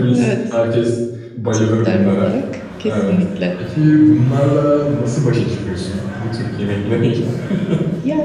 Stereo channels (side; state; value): both; identical; correlation 1.00